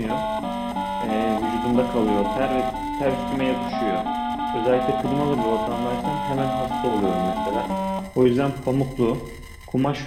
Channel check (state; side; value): identical; both; correlation 1.00